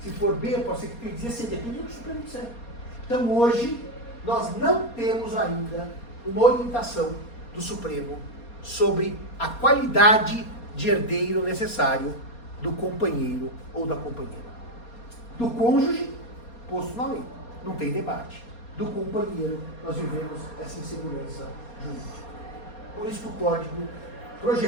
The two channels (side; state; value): right; late; 4.2 ms